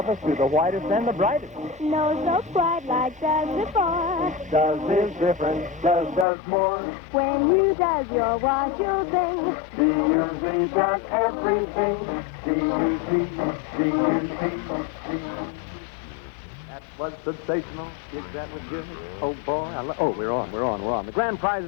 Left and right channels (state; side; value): drops out; right; at 6.2 s